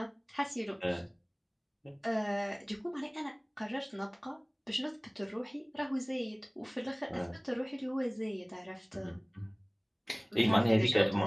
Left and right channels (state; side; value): identical; both; correlation 1.00